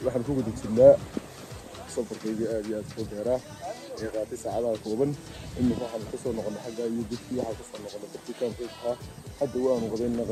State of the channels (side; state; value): both; identical; correlation 1.00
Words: waxaan ku guda jirnaa safarkaygii aad iyo aad u dheeraa ee qaatay saacadaha kooban imika waxaan kasoo noqonay xagga iyo dadkii waxaan kasoo noqonay dadkii kaamkayga ahaa hadda waanu qadaynaa